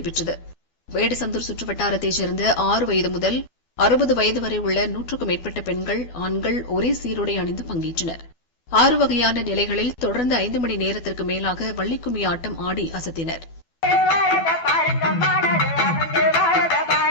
வேடசந்தூர் சுற்றுவட்டாரத்தைச் சேர்ந்த 6 வயது முதல் 60 வயது வரை உள்ள 100க்கும் மேற்பட்ட பெண்கள், ஆண்கள் ஒரே சீருடை அணிந்து பங்கேற்றனர். 6 வகையான நிலைகளில் தொடர்ந்து 5 மணி நேரத்திற்கு மேலாக வள்ளிக்கும்மி ஆட்டம் ஆடி அசத்தினர்.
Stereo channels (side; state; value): right; late; 12 ms